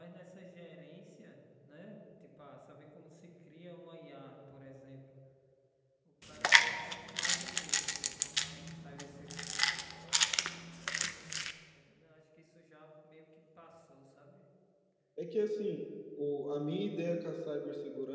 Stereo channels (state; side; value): identical; both; correlation 1.00